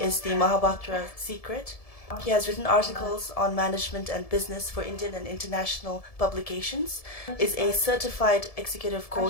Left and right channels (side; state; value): right; late; 1.7 ms